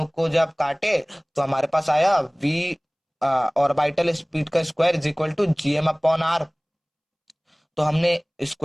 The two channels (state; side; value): identical; both; correlation 1.00